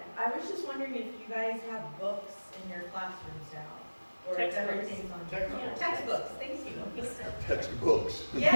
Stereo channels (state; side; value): inverted; both; correlation -1.00